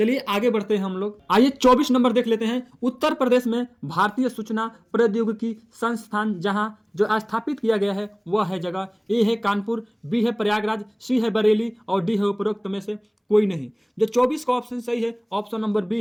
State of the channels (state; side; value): identical; both; correlation 1.00